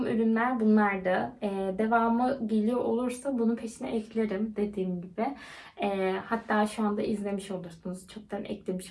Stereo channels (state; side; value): identical; both; correlation 1.00